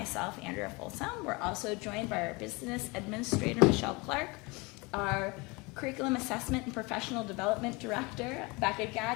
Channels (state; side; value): quieter; right; 26.1 dB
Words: Andrea Folsom. We're also joined by our business administrator, Michelle Clark, our curriculum assessment and professional development director, Becca